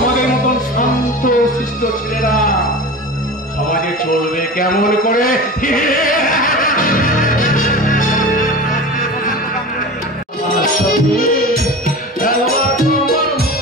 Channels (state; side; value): normal; both; correlation 0.32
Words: মতন শান্ত শিষ্ট ছেলেরা সমাজে চলবে কেমন করে?